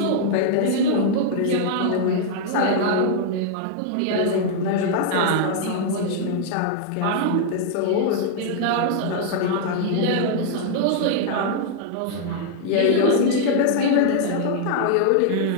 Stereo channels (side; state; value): both; different; correlation -0.01